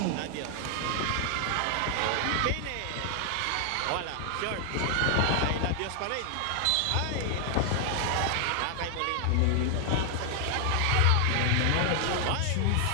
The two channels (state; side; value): different; both; correlation 0.00